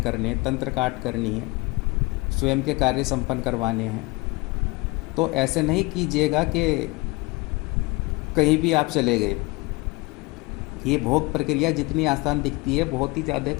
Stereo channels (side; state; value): right; quieter; 24.3 dB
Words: हैं, तंत्र काट करनी है, स्वयं के कार्य संपन्न करवाने हैं, तो ऐसे नहीं कीजिएगा कि कहीं भी आप चले गए। ये भोग प्रक्रिया जितनी आसान दिखती है, बहुत ही ज़्यादा